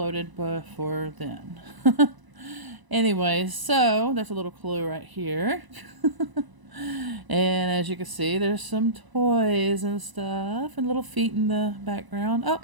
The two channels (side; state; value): left; late; 1.0 ms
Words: before then. Anyways, so that's a little clue right here. And as you can see, there's some toys and stuff and little feet in the background. Oh,